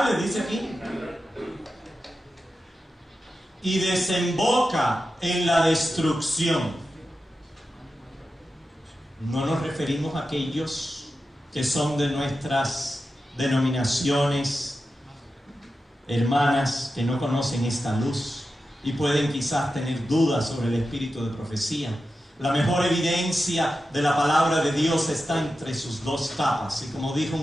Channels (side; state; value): both; normal; correlation 0.91